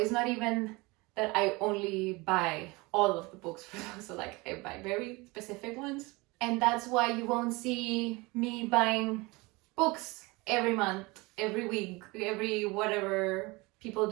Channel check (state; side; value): quieter; left; 24.3 dB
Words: not even that I only buy all of the books for those. So like I buy very specific ones. And that's why you won't see me buying books every month, every week, every whatever people